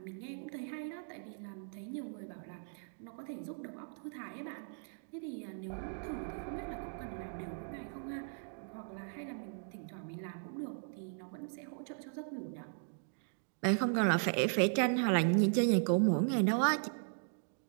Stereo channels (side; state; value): left; silent; digital silence